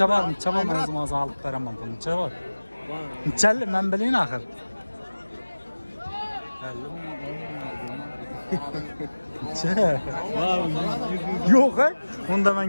o'zim olib beraman buni. Necha bor? Nechalli men bilayin axir. Necha? Yo'q, unda men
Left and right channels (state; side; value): inverted; both; correlation -1.00